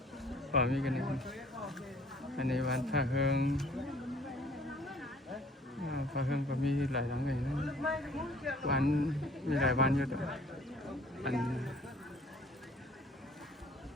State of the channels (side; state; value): both; normal; correlation 0.55